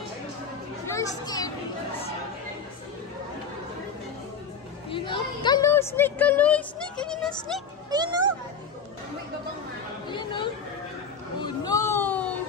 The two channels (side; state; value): right; quieter; 5.8 dB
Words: You're scared. Ayun o. Kalo, snake, kalo. Snake, ayun o, snake. Ayun o. Ayun o. Oh no!